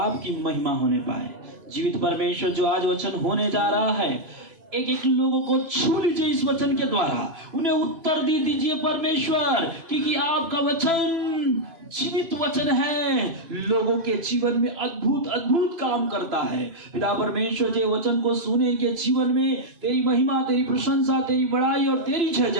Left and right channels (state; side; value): late; left; 3.0 ms